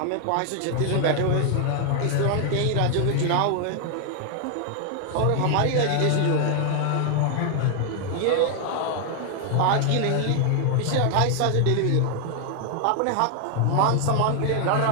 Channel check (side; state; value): both; different; correlation 0.00